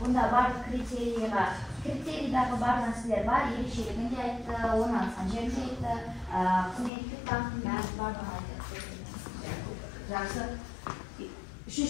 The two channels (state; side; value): drops out; right; at 6.9 s